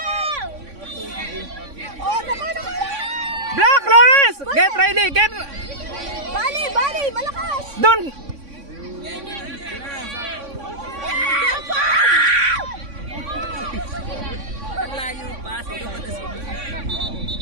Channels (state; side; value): late; left; 3.5 ms